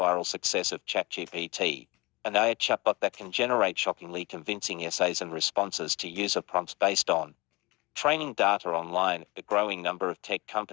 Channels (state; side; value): quieter; right; 23.1 dB